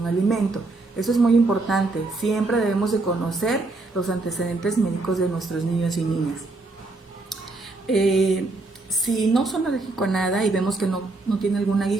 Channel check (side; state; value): left; quieter; 3.3 dB